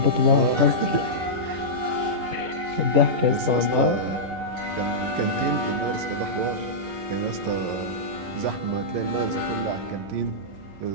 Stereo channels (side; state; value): left; late; 11 ms